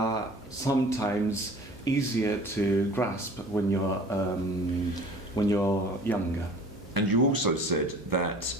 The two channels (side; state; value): both; normal; correlation 0.45